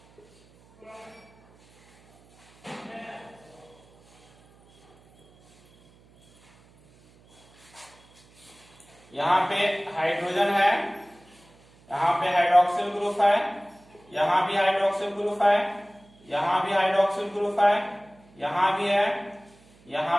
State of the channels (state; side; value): noise; right; hum, 29 dB below the sound